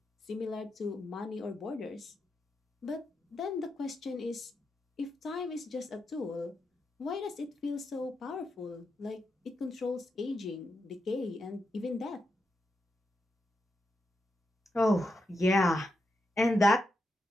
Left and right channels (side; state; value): both; normal; correlation 0.85